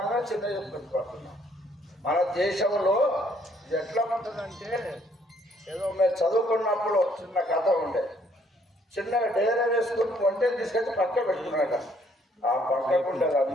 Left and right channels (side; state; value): both; normal; correlation 0.65